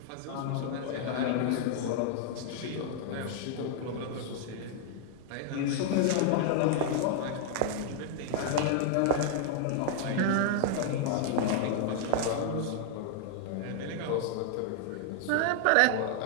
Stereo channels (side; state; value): both; different; correlation 0.00